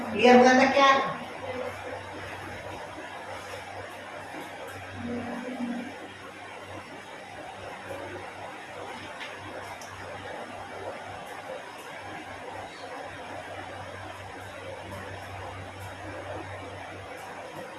क्लियर हो जाता क्या,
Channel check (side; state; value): both; identical; correlation 1.00